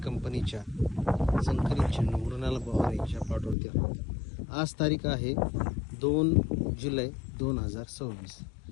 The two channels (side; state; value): right; drops out; at 3.6 s